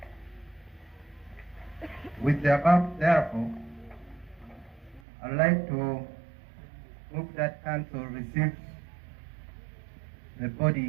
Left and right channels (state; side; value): drops out; left; at 5.0 s